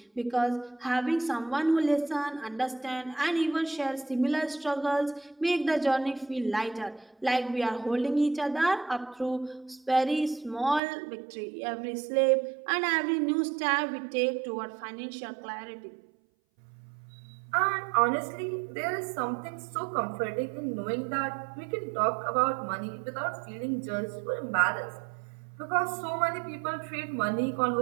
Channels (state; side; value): drops out; left; at 10.8 s